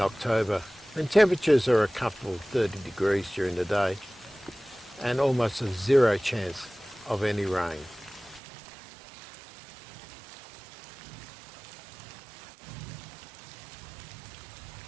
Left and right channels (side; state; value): left; drops out; at 8.4 s